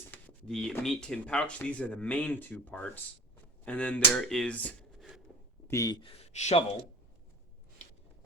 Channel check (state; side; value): normal; both; correlation 0.38